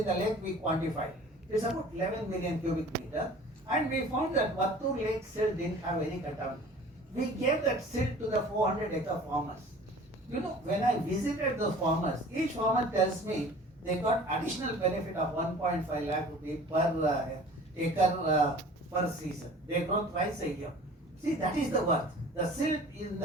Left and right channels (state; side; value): normal; both; correlation 0.45